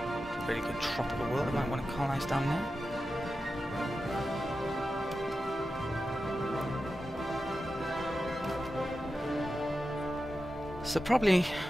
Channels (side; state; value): both; normal; correlation 0.91